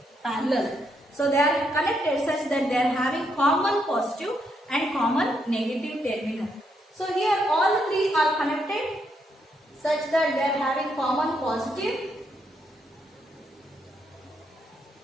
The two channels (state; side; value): normal; both; correlation 0.77